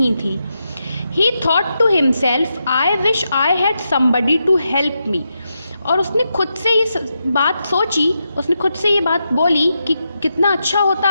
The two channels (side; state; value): both; inverted; correlation -0.85